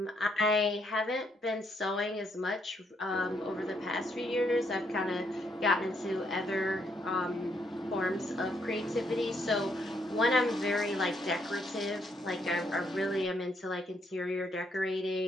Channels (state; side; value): normal; both; correlation 0.74